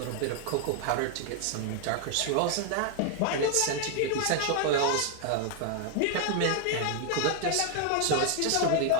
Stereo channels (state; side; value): different; both; correlation 0.00